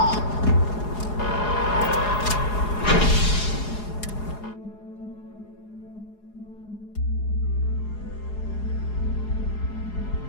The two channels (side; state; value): right; late; 4.8 ms